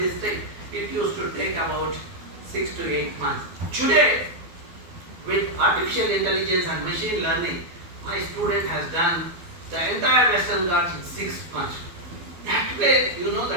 it used to take about 6 to 8 months. Today, with artificial intelligence and machine learning, my student has done the entire Western Ghats in 6 months. That way,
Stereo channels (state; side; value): late; left; 12 ms